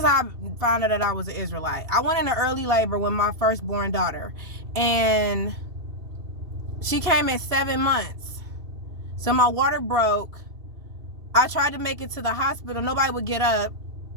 how I found out that I was an Israelite. I went into early labor with my firstborn daughter, and she came at 7 months. So my water broke. I tried to make it to the hospital. Nobody would get up.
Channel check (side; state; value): left; late; 2.7 ms